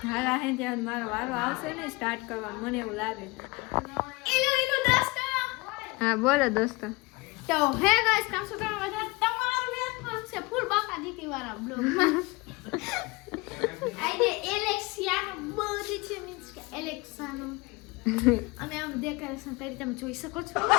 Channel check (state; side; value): quieter; right; 24.6 dB